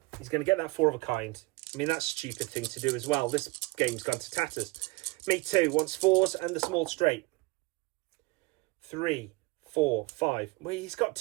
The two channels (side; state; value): left; quieter; 24.0 dB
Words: He's going to get that 4 of a kind. I mean, that's a stupid thing to do as well. This game's gone to tatters. Me too wants 4s and the small straight. 3, 4, 5. Well, he's got